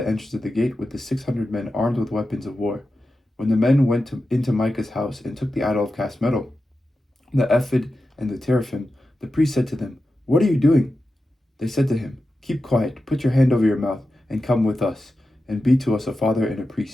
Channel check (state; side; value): normal; both; correlation 0.91